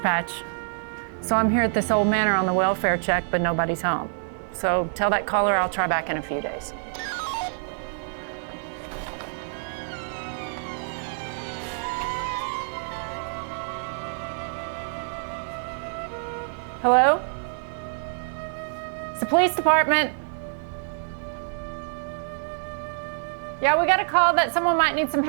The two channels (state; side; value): silent; left; digital silence